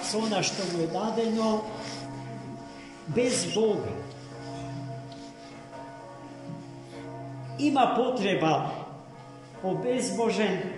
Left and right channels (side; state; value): both; identical; correlation 1.00